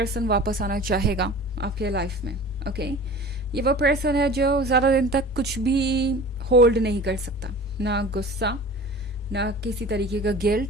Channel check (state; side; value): normal; both; correlation 0.40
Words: वापस आना चाहेगा आपके लाइफ में। ओके, ये वो पर्सन है जो ज़्यादा दिन तक कुछ भी होल्ड नहीं कर सकता, ना गुस्सा, ना किसी तरीके का